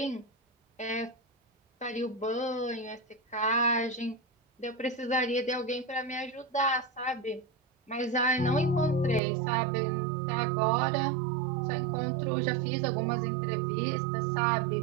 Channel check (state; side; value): drops out; left; at 9.2 s